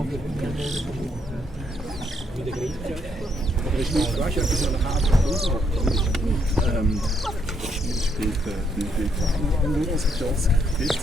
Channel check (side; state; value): both; normal; correlation 0.74